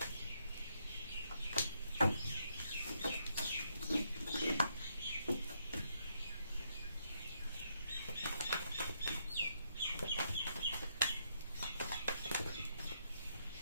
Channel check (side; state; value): both; inverted; correlation -0.76